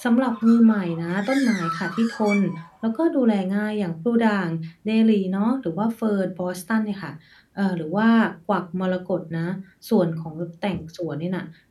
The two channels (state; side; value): identical; both; correlation 1.00